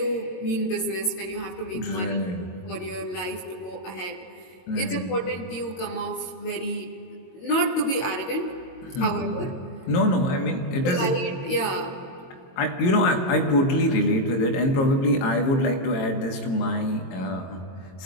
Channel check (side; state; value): right; late; 22 ms